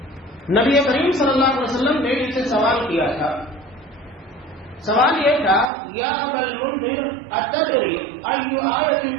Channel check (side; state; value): left; drops out; at 5.7 s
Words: نبی کریم صلی اللہ علیہ وسلم نے ان سے سوال کیا تھا، سوال یہ تھا، یا ابا المنذر اتدری ای آیت